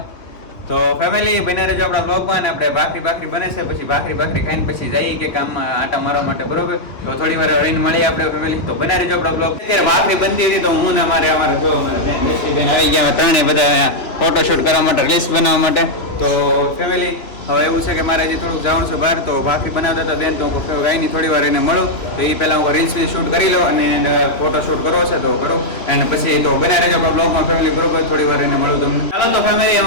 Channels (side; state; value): right; late; 2.9 ms